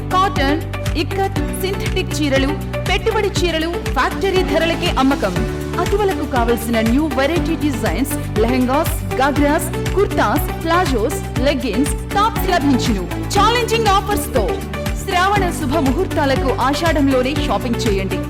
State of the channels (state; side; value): identical; both; correlation 1.00